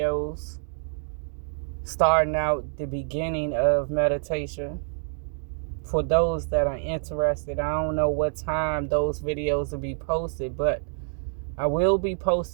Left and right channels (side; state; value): left; silent; digital silence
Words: starting out the beginning of meditation for those that are interested. I don't know what time those videos will be posted, but I will be